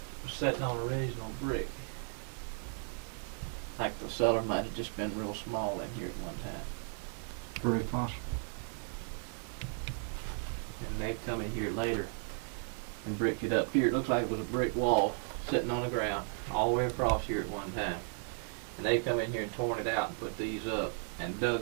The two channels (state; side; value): silent; left; 54 dB below the other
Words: was sitting on original brick. Like the cellar might have just been real small in here at one time. Very possible. And they've come in here later and bricked it up here. It looks like it was a brick wall sitting on the ground all the way across here at one time. And they've come in here and torn it out and put these up and